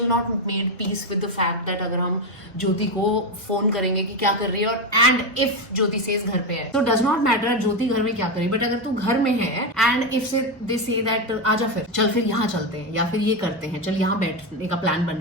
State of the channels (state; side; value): normal; both; correlation 0.11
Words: not made peace with the fact that अगर हम ज्योति को फोन करेंगे कि क्या कर रही है, और एंड इफ ज्योति सेज घर पे है, तो डज नॉट मैटर ज्योति घर में क्या करी, बट अगर तू घर में है एंड इफ से दे से दैट आजा फिर यहाँ चलते हैं, या फिर ये करते हैं, चल यहाँ बैठने का प्लान बन